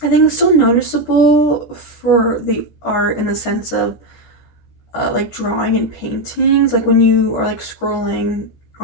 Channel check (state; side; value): late; right; 14 ms